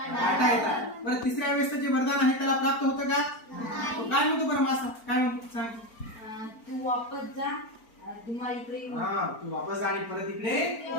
येतात. बरं, तिसऱ्या वेळेस जे वरदान आहे त्याला प्राप्त होतं का? तो काय म्हणतो बरं मासा? काय म्हणतो सांग. तू वापस जा, तुम्हा इकडे येऊ. हा, तू वापस जा आणि परत इकडे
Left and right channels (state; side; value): late; right; 4.4 ms